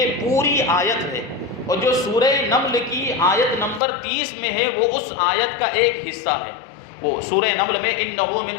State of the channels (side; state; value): right; drops out; at 3.8 s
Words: پوری آیت ہے، اور جو سورہ نمل کی آیت نمبر 30 میں ہے وہ اس آیت کا ایک حصہ ہے۔ وہ سورہ نمل میں انہو من